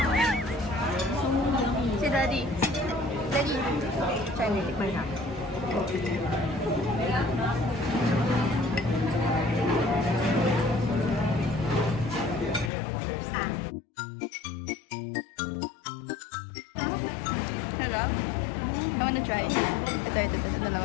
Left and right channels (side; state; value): right; drops out; at 12.7 s